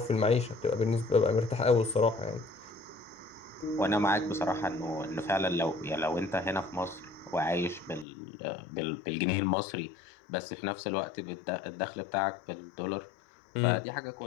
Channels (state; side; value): drops out; right; at 8.1 s